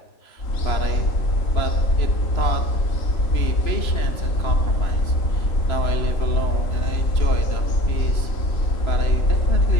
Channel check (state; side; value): late; right; 3.0 ms